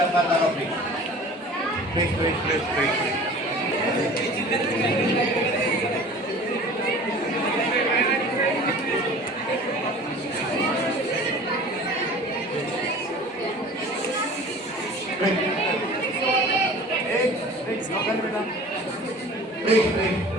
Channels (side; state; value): both; normal; correlation 0.43